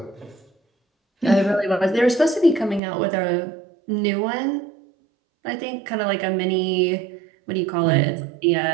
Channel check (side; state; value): left; drops out; at 2.8 s